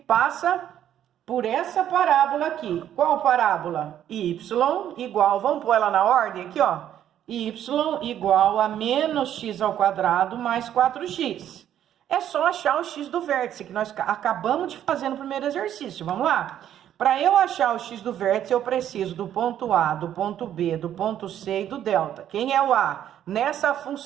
por essa parábola aqui. Qual parábola? Y igual, vamos pôr ela na ordem aqui, ó. Y igual a menos x ao quadrado mais 4x. É só achar o x do vértice, que nós acabamos de fazer no primeiro exercício. Vamos lá? Para eu achar o x do vértice, eu preciso do ponto A, do ponto B, do ponto C e do delta. Quem é o A? Nessa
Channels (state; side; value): quieter; left; 10.7 dB